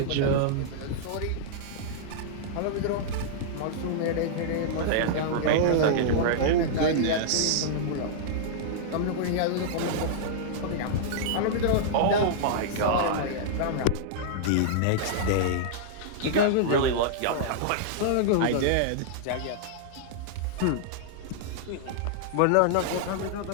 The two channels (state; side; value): different; both; correlation -0.02